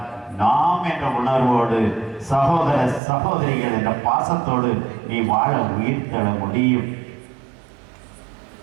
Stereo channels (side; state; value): left; drops out; at 3.0 s